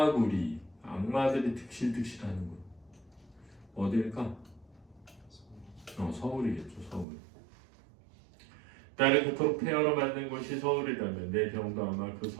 악마들이 득실득실하는 곳. 어딜까? 서울이겠죠. 서울. 나를 그토록 폐허로 만든 곳이 서울이라면 내 병도 아마 그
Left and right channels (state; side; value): drops out; left; at 7.1 s